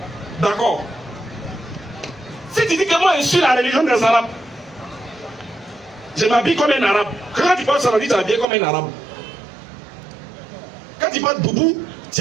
D'accord. Si tu dis que moi je suis la religion des Arabes, je m'habille comme un arabe. Quand tu parles saladie, tu es habillé comme un arabe. Quand tu parles boubou, tu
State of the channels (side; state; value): left; drops out; at 8.5 s